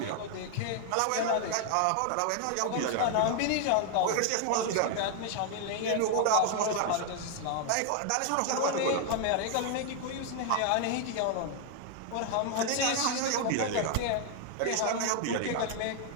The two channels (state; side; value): different; both; correlation 0.00